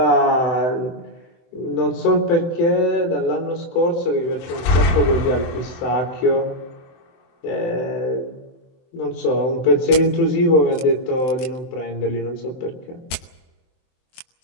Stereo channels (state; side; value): late; right; 23 ms